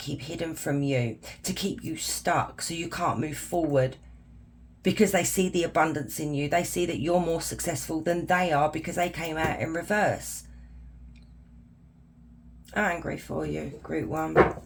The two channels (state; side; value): identical; both; correlation 1.00